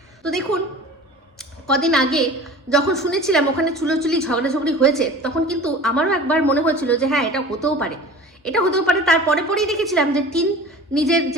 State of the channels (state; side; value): normal; both; correlation 0.40